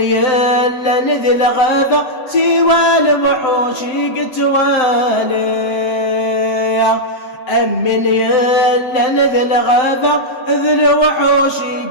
نذل غذا سوى الوحوش قتوالي أمن يلا نذل غذا ذل وحوش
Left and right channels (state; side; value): late; right; 7.8 ms